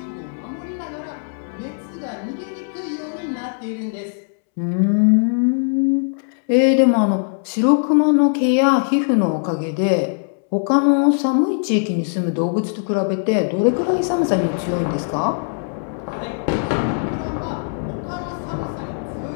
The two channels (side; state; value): right; silent; 65 dB below the other